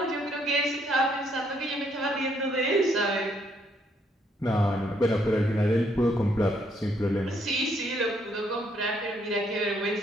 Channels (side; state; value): both; normal; correlation 0.71